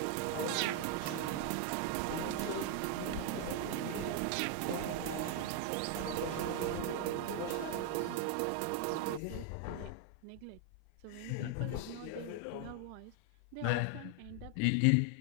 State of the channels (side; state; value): both; different; correlation 0.00